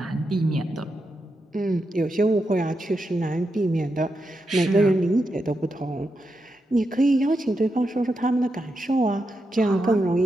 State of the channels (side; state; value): both; normal; correlation 0.86